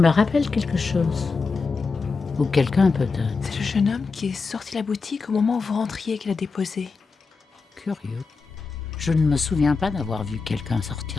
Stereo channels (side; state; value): right; quieter; 4.5 dB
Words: rappelle quelque chose. Ou quelqu'un peut-être. C'est le jeune homme qui est sorti de la boutique au moment où vous rentriez et qui l'a déposé. Curieux. Je ne me souviens pas d'avoir vu quelqu'un